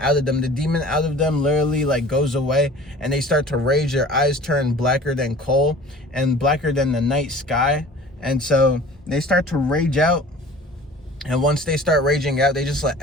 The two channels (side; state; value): both; normal; correlation 0.43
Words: of them. The demon out of them literally, like, goes away, and they start to rage. Their eyes turn blacker than coal and blacker than the night sky. And so they start to rage out, and once they start raging out, they just let